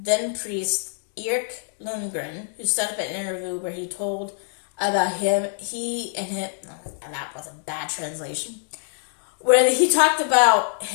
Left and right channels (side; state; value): right; silent; digital silence